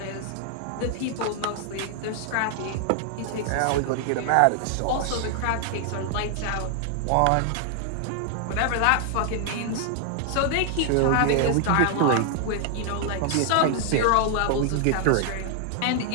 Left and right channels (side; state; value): both; different; correlation 0.00